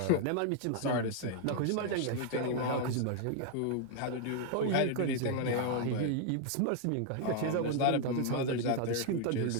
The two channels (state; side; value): different; both; correlation 0.00